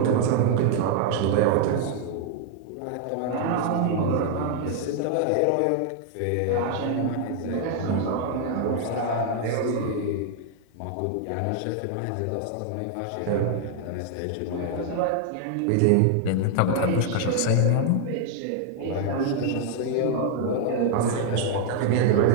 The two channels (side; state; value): both; different; correlation 0.00